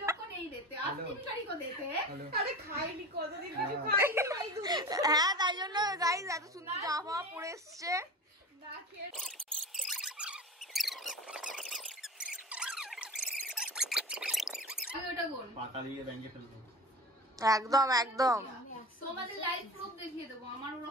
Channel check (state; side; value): normal; both; correlation 0.31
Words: लोग को नहीं देते, असली भिखारी को देते हैं। আরে খাইনি কতদিন কিছু খাইনি ভাই দুধ হ্যাঁ, তাই জন্য গাইস এত সুন্দর জামা পরে এসছে। না খেয়ে আমি ওটা বল, পাতা দিয়ে ব্যাংকে ফেলবো। একদম একদম। তোমাদের লাইভ প্রুফ দেখিয়ে দেবো, আমার